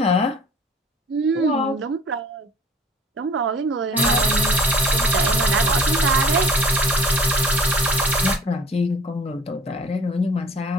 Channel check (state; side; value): normal; both; correlation 0.49